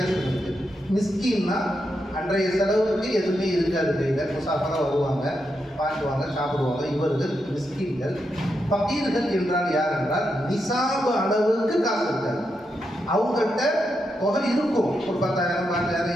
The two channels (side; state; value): both; normal; correlation 0.84